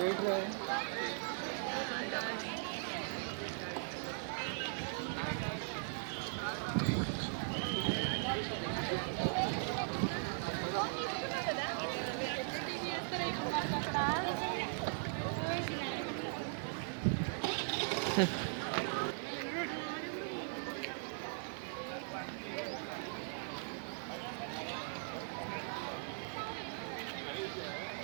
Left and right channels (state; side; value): silent; left; 52 dB below the other